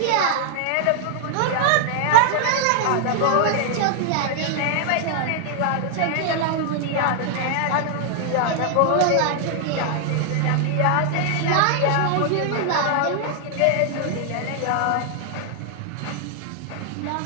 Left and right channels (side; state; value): both; different; correlation 0.00